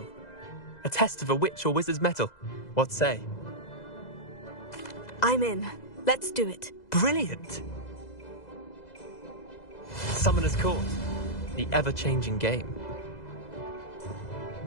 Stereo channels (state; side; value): late; right; 2.0 ms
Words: A test of a witch or wizard's mettle. What say? I'm in. Let's do it. Brilliant! Summoner's Court. The ever-changing game.